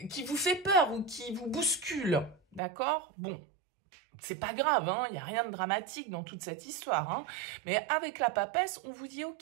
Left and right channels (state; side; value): drops out; left; at 2.6 s